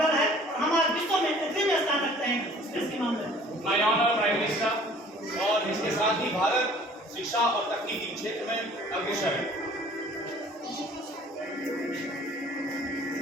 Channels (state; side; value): normal; both; correlation 0.52